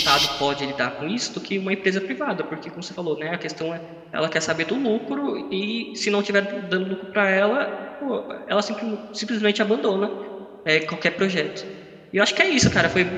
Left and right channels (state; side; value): identical; both; correlation 1.00